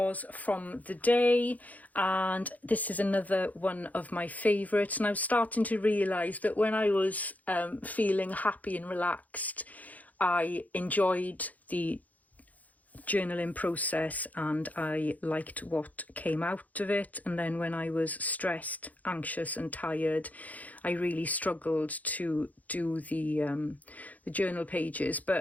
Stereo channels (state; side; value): late; right; 0.077 ms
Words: from the day, and this is another one of my favourites, and I was starting to realise that when I was feeling happy and relaxed, I enjoyed the journaling process and I liked what came out of it. And then when I was stressed, anxious and tired, I really struggled to do the journal pages.